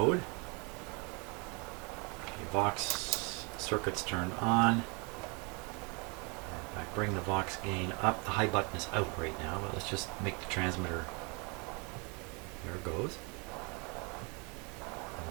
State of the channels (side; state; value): left; quieter; 32.0 dB